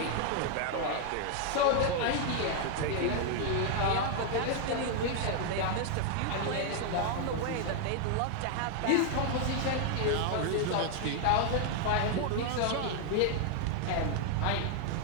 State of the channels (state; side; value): different; both; correlation 0.00